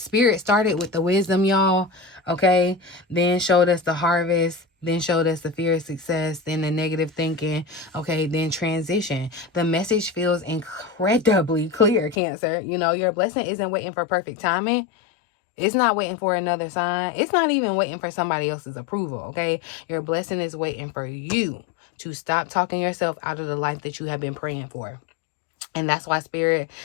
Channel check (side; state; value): right; drops out; at 12.2 s